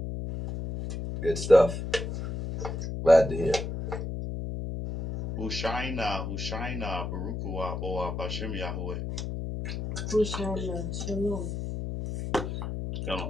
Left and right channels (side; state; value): left; noise; hum, 4 dB below the sound